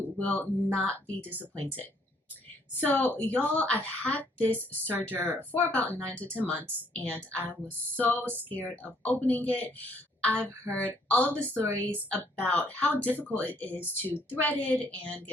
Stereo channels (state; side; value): normal; both; correlation 0.66